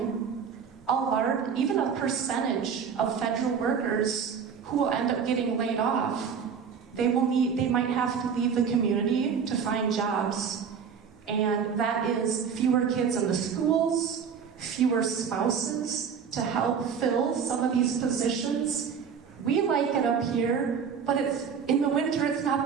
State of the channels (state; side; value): quieter; left; 6.7 dB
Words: a large, even a percentage of federal workers who will end up getting laid off, they might have to leave the community to find jobs. And that is fewer kids in the schools, fewer spouses to help fill some of these positions. We like it up here, but in the winter it's not